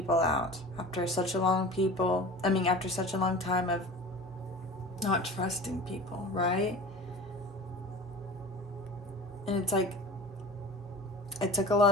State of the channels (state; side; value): normal; both; correlation 0.37